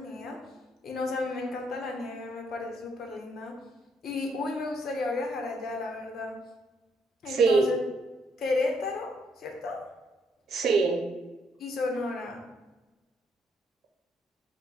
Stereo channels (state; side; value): normal; both; correlation 0.72